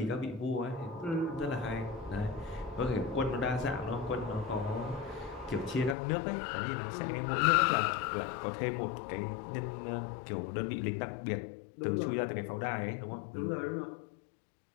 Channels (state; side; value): drops out; right; at 6.0 s